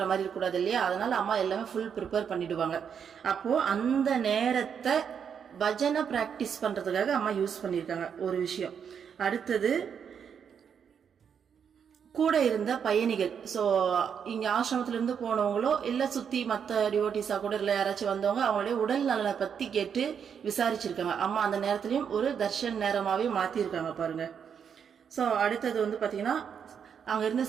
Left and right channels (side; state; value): left; quieter; 7.4 dB